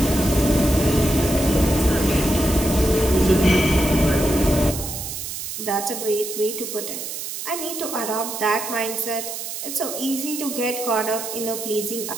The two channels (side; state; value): right; noise; hiss, 7 dB below the sound